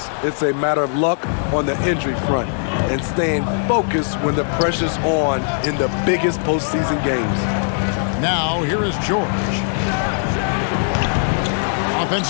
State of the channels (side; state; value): right; silent; digital silence